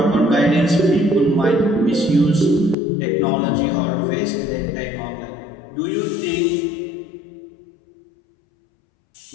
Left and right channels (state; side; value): drops out; right; at 2.8 s